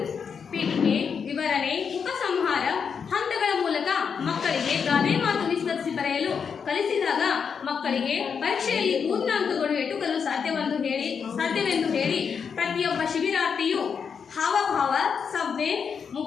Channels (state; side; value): quieter; right; 6.5 dB